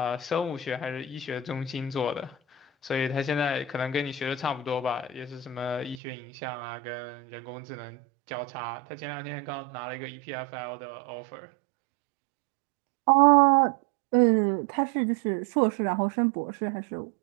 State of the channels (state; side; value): drops out; left; at 6.0 s